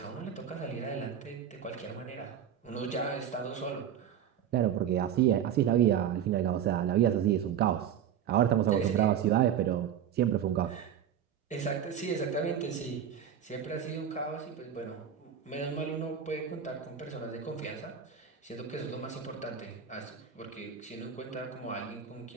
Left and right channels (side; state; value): left; quieter; 9.0 dB